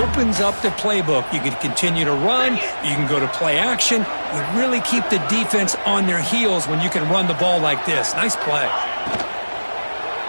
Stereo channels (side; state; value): both; inverted; correlation -1.00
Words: up the playbook. You can continue to run. You can go to play action. You really keep the defense on their heels when you can run the ball like this. Nice play.